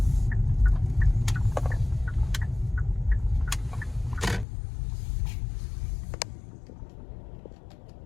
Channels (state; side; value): drops out; right; at 4.5 s